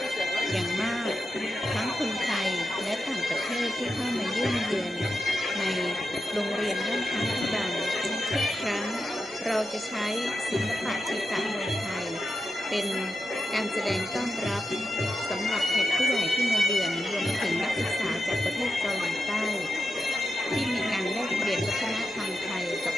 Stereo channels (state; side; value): normal; both; correlation 0.88